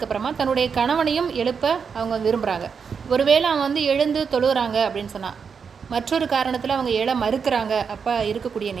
தன்னுடைய கணவனையும் எழுப்ப அவங்க விரும்புகிறாங்க. ஒருவேளை அவன் எழுந்து தொழுகிறாங்க அப்படின்னு சொன்னால், மற்றொரு காரணத்தில் அவங்க எழ மறுக்கிறாங்க. அப்போ இருக்கக்கூடிய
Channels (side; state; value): left; quieter; 6.2 dB